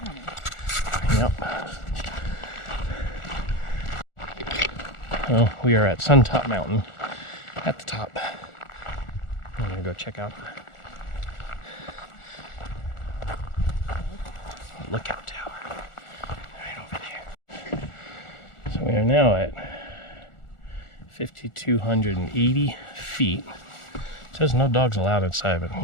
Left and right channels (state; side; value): late; right; 1.4 ms